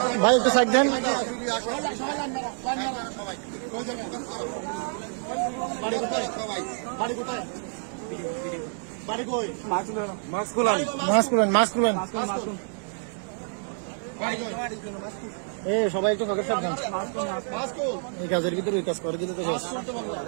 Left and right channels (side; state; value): left; silent; 56 dB below the other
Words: ভাই একটু সাইড দেন বাড়ি কোথায় বাড়ি কোথায় বাড়ি কই মাস্ক খুলেন এ সবাই একটু কাগজ সাবধান এই কাজের ভিতরে ওই কাজ করে দিলে তো